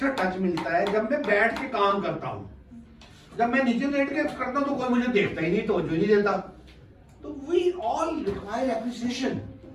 टच मिलता है जब मैं बैठ के काम करता हूँ। जब मैं नीचे लेट के करता हूँ तो कोई मुझे देखता ही नहीं, तवज्जो नहीं देता। तो we all require appreciation,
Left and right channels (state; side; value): identical; both; correlation 1.00